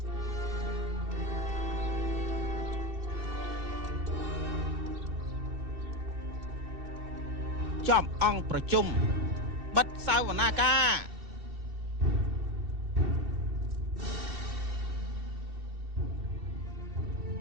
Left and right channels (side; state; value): left; late; 2.6 ms